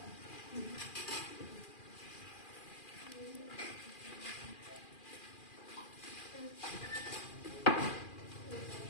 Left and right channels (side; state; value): right; late; 2.4 ms